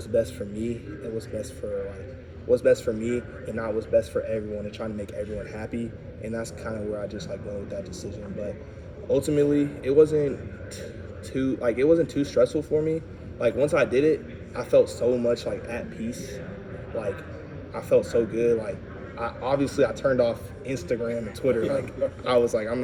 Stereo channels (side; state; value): both; identical; correlation 1.00